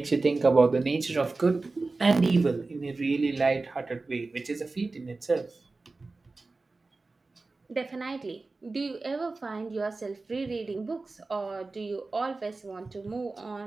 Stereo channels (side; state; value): left; quieter; 3.6 dB